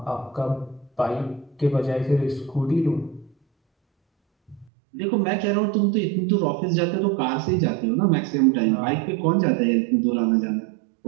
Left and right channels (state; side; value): drops out; left; at 4.7 s